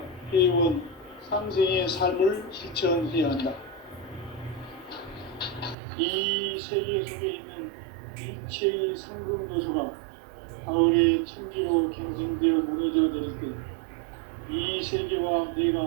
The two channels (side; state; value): left; drops out; at 5.8 s